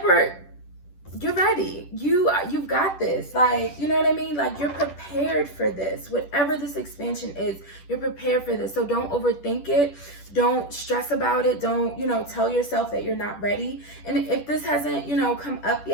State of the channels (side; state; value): right; late; 10 ms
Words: you're ready. You've got this. Like, you know what I mean? Like, you're prepared for this. Whatever this expansion is, you're prepared for this. So don't overthink it. Don't stress about it. Don't, you know, tell yourself that you're not ready. And if this hasn't, you know, come up